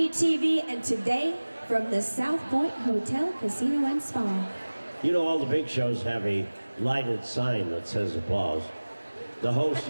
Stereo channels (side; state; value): both; inverted; correlation -1.00